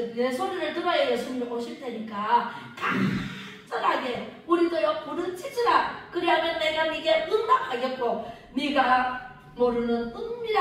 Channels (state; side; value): identical; both; correlation 1.00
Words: 내 소리를 들어야 예수님이 오실 테니까 간절하게 우리도요 부르짖으라. 그리하면 내가 네게 응답하겠고 네가 모르는